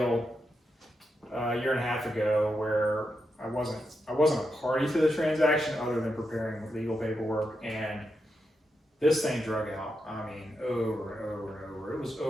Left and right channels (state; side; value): normal; both; correlation 0.85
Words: a year and a half ago where I wasn't a party to the transaction other than preparing legal paperwork, and this thing drug out. I mean, over and over and over. It was